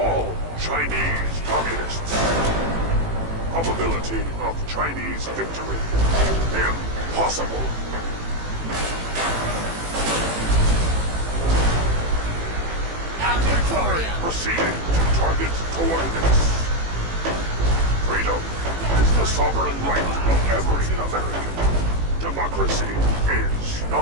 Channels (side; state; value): left; late; 18 ms